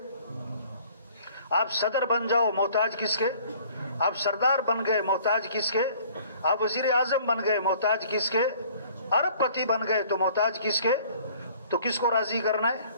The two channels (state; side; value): inverted; both; correlation -0.54